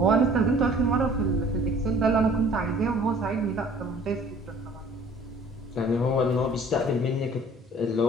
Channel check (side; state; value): both; normal; correlation 0.51